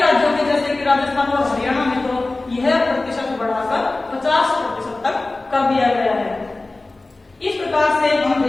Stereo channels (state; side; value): quieter; right; 3.1 dB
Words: में जैसे कि राजस्थान और हरियाणा में तो यह प्रतिशत बढ़ाकर 50% तक कर दिया गया है। इस प्रकार से हम